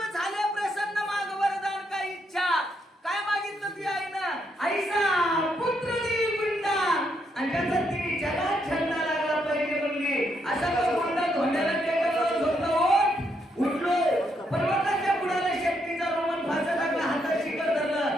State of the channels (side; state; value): both; normal; correlation 0.77